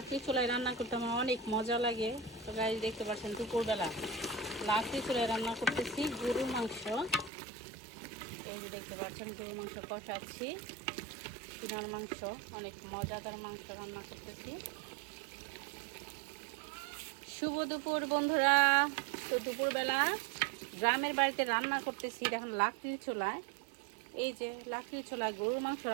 চুলায় রান্না করতে আমার অনেক মজা লাগে। তো গাইস দেখতে পাচ্ছেন দুপুরবেলা লাকড়ি চুলায় রান্না করতেছি গরুর মাংস। এই যে দেখতে পাচ্ছেন গরুর মাংস কষাচ্ছি, সিনার মাংস, অনেক মজাদার মাংস রান্না করতেছি। শুভ দুপুর বন্ধুরা। তো দুপুরবেলা গ্রামের বাড়িতে রান্না করতেছি, এখন লাকড়ির চুলায়। এই যে লাকড়ির চুলায় গরুর মাংস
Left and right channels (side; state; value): left; drops out; at 7.3 s